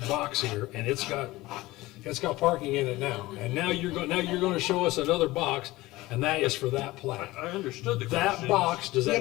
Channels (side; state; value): right; quieter; 19.0 dB